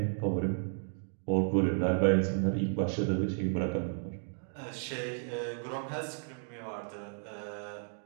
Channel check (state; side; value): silent; left; 56 dB below the other